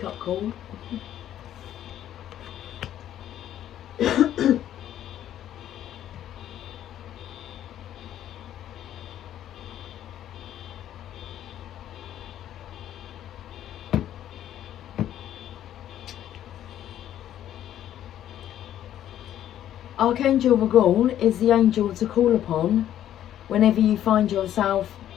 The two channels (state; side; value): quieter; right; 11.4 dB